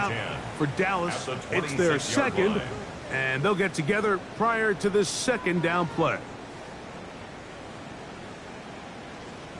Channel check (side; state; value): both; identical; correlation 1.00